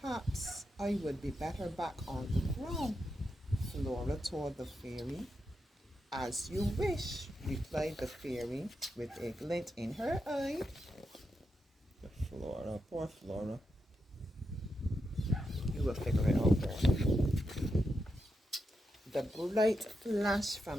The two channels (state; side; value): normal; both; correlation 0.86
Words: I would be better back on the ground, Flora told the fairy. As you wish, replied the fairy with a glint in her eye. Flora, poor Flora. You will figure it out there. The bright flash